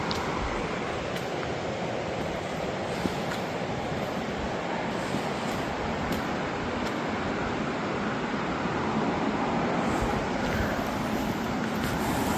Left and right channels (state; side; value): identical; both; correlation 1.00